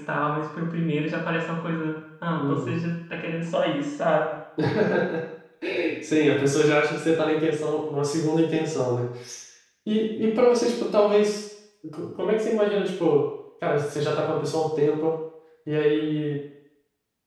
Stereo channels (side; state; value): both; identical; correlation 1.00